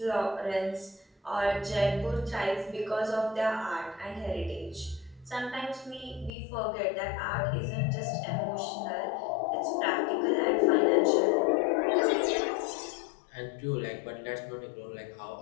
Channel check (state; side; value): drops out; right; at 6.4 s